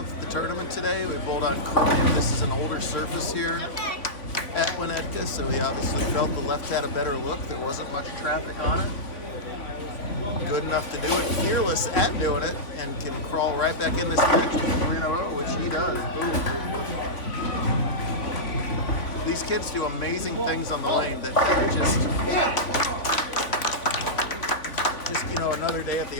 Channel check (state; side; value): late; right; 3.5 ms